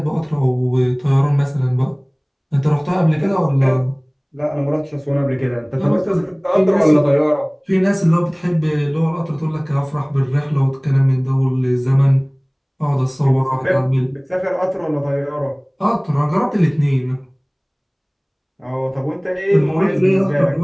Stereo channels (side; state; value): both; identical; correlation 1.00